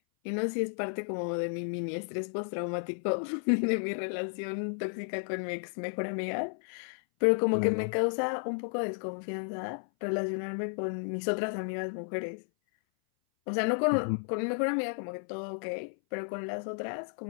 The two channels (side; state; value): right; silent; 56 dB below the other